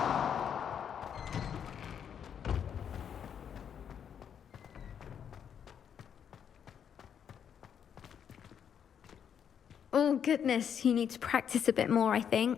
Oh, goodness, you need to practice a bit more, I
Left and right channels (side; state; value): right; quieter; 8.2 dB